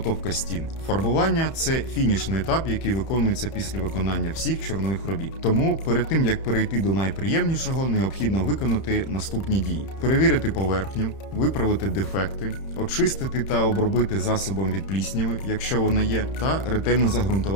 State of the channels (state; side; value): late; right; 31 ms